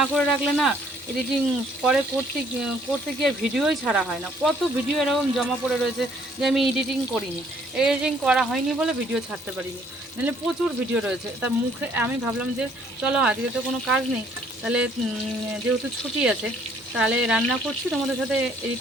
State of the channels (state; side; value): normal; both; correlation 0.63